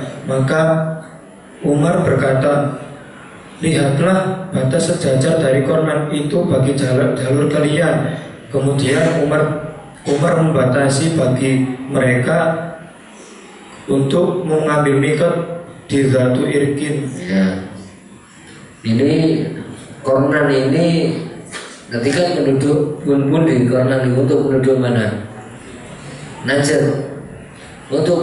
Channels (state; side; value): identical; both; correlation 1.00